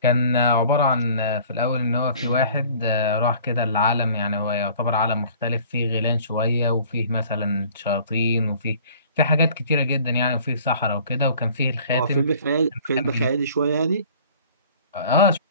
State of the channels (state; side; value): inverted; both; correlation -0.50